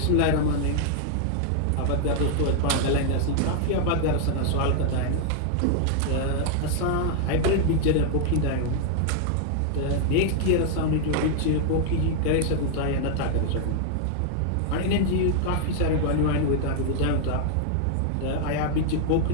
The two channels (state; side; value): different; both; correlation 0.00